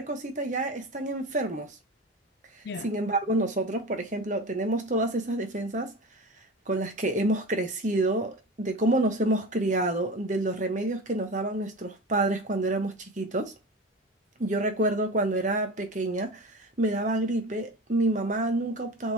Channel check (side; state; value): both; normal; correlation 0.30